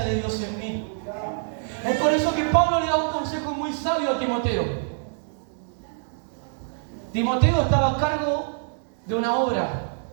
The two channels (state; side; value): silent; left; digital silence